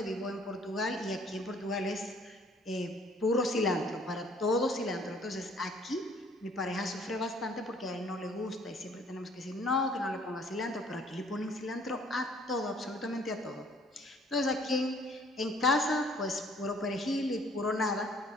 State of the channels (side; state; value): both; normal; correlation 0.58